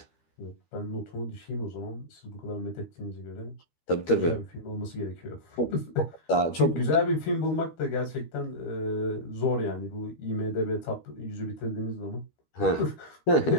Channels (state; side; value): late; right; 13 ms